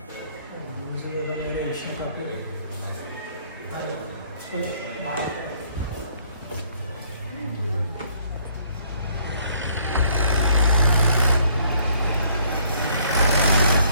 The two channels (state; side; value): inverted; both; correlation -0.65